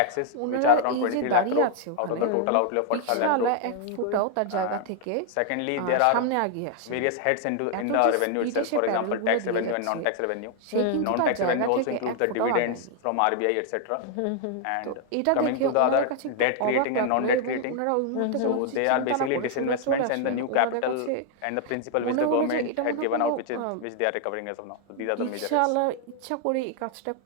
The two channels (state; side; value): different; both; correlation 0.00